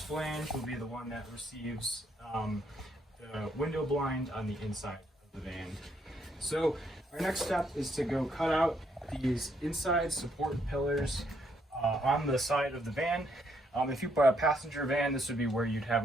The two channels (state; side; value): normal; both; correlation 0.73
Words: flange will be the one that receives the window blind on the inside of the van. So our next step is to go cut out these inside support pillars on the side of the van. If you bought a passenger van, this would be where you'd have